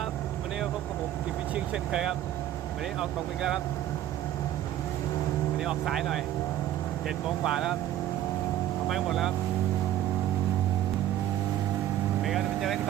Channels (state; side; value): quieter; left; 12.4 dB